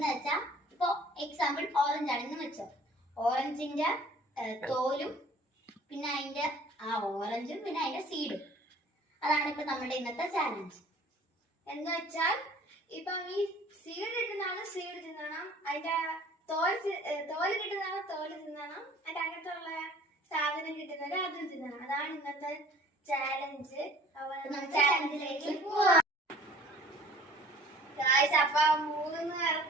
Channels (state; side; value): normal; both; correlation 0.50